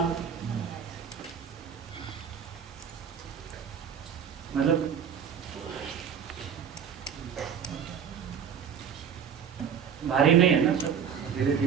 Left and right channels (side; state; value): left; quieter; 7.7 dB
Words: मतलब भारी नहीं है ना सब, धीरे